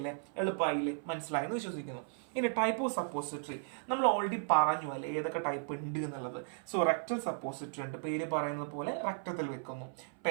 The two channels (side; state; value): left; silent; 54 dB below the other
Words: എളുപ്പമായില്ലേ? മനസ്സിലായെന്ന് വിശ്വസിക്കുന്നു. ഇനി ടൈപ്പ് ഓഫ് സപ്പോസിറ്ററി നമ്മൾ ഓൾറെഡി പറഞ്ഞു അല്ലേ ഏതൊക്കെ ടൈപ്പ് ഉണ്ട് എന്നുള്ളത്. സോ റെക്ടൽ സപ്പോസിറ്ററി ഉണ്ട്, പേര് പറയുന്നത് പോലെ റക്ടത്തിൽ വെക്കുന്നു.